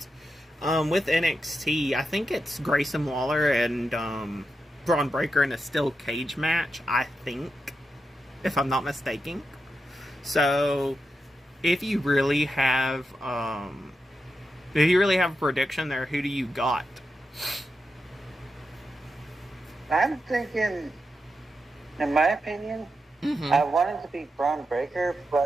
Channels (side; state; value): both; normal; correlation 0.87